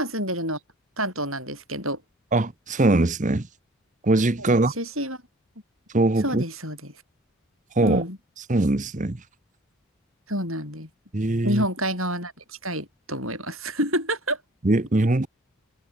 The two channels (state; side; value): normal; both; correlation 0.51